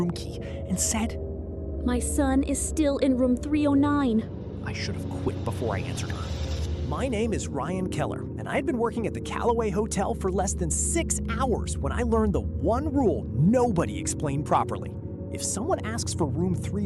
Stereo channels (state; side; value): identical; both; correlation 1.00